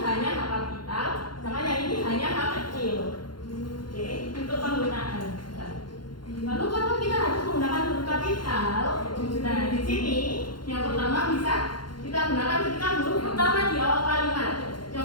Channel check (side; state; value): right; late; 0.71 ms